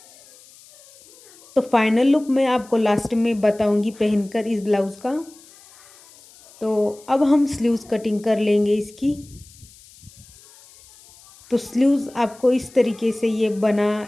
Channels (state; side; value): noise; left; hiss, 25 dB below the sound